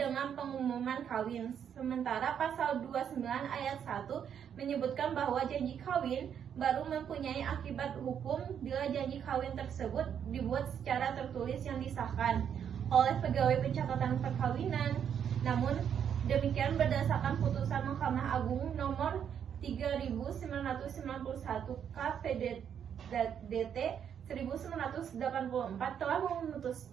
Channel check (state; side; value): quieter; left; 8.4 dB